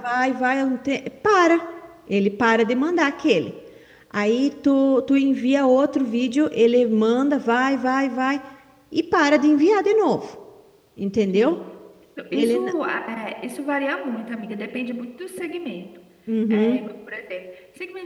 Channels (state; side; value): identical; both; correlation 1.00